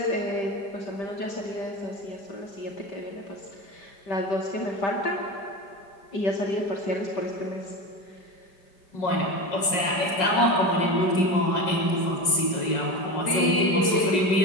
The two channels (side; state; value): right; late; 5.5 ms